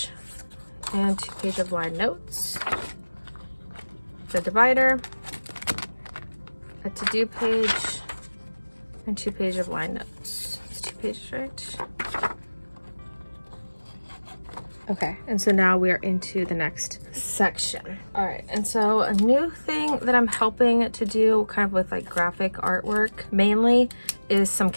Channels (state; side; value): inverted; both; correlation -1.00